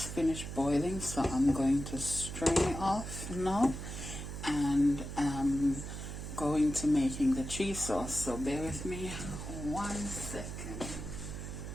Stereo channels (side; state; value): right; noise; hum, 7 dB below the sound